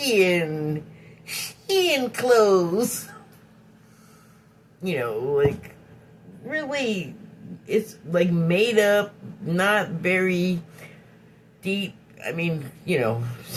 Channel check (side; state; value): both; identical; correlation 1.00